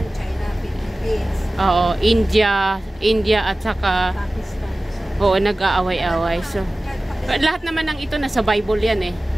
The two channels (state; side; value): normal; both; correlation 0.97